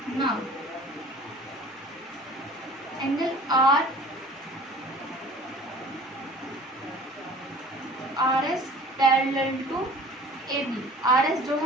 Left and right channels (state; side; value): normal; both; correlation 0.46